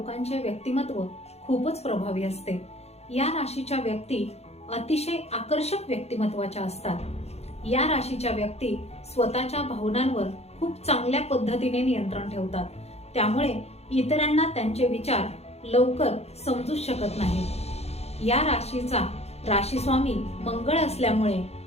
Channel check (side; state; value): right; late; 0.31 ms